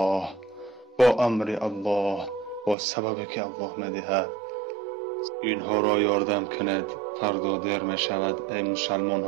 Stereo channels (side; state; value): left; drops out; at 2.8 s